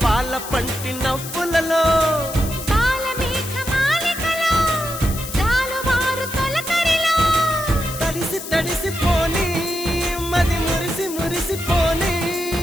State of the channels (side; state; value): left; noise; hiss, 10 dB below the sound